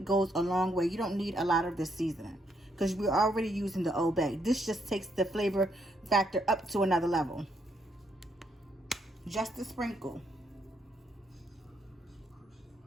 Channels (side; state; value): both; normal; correlation 0.74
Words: goes a long way. You don't need a lot of this seasoning because we're already using the Old Bay. This just takes the flavor factor up to another level. Just a sprinkle.